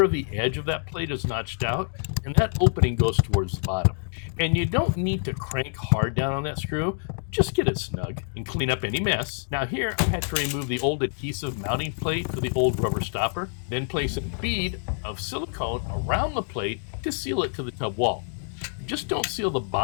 of the edge of that plate is notched out, and that opening goes towards the bottom. And you don't need to crank hard down on that screw, just get it snug and clean up any mess. Now here I had to remove the old adhesive mounting plate for the old rubber stopper, then place a bead of silicone around the plate to seal it to the tub wall. Just don't seal the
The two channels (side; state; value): right; silent; digital silence